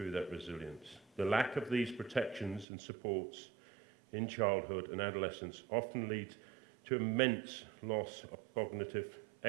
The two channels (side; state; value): left; drops out; at 2.7 s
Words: that resilience. The lack of these protections and supports in childhood and adolescence often leads to immense loss of cognitive,